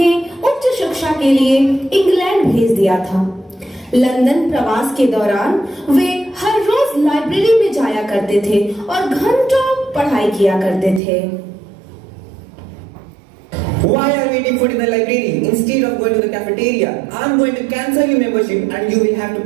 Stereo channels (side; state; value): left; drops out; at 11.0 s